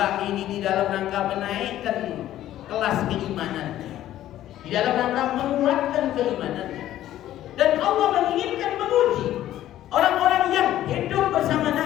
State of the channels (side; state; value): right; quieter; 13.0 dB